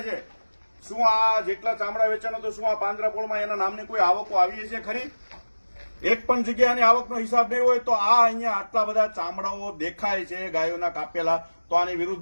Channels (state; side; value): inverted; both; correlation -1.00